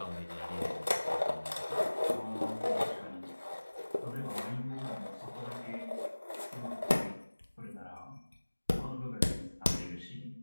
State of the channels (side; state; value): both; inverted; correlation -1.00